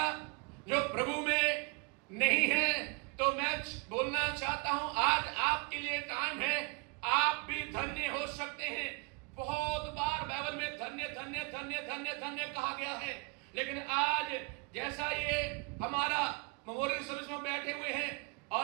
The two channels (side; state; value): left; quieter; 32.2 dB